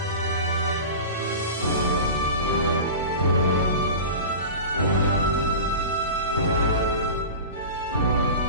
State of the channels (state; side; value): inverted; both; correlation -0.32